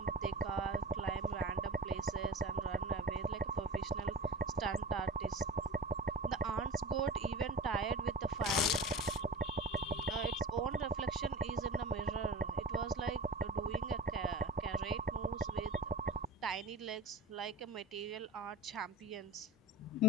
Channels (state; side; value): normal; both; correlation 0.36